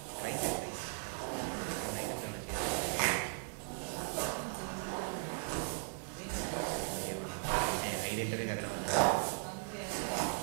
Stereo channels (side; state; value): left; silent; 53 dB below the other